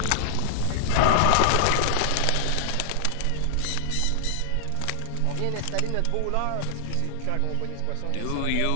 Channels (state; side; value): different; both; correlation -0.01